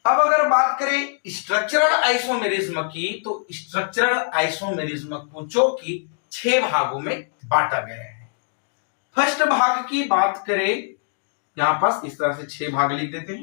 अब अगर बात करें स्ट्रक्चरल आइसोमेरिज्म की, तो स्ट्रक्चरल आइसोमेरिज्म को जो कि 6 भागों में बांटा गया है। फर्स्ट भाग की बात करें, यहां पास इस तरह से 6 भाग लिख देते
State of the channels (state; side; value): silent; right; digital silence